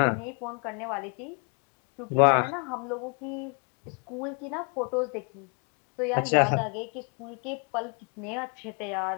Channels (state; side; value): quieter; right; 38.3 dB